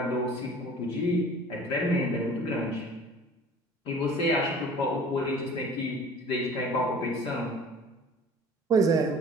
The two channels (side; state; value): both; normal; correlation 0.46